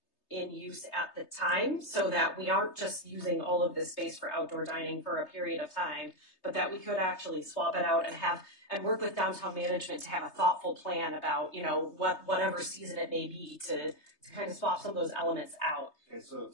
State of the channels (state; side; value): late; right; 3.3 ms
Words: in use at the time, so that we aren't just using all of this space for outdoor dining for a period of time, but that we could actually swap it out and work with downtown management to have a thoughtful plan about, whatever season it may be to kind of swap some of those elements out. Okay, so